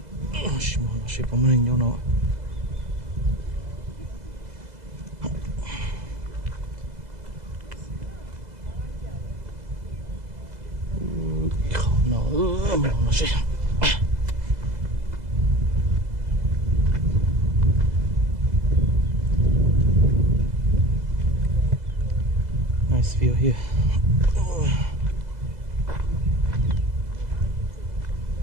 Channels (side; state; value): left; late; 2.0 ms